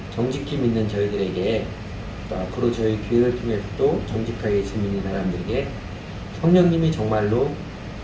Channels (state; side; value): identical; both; correlation 1.00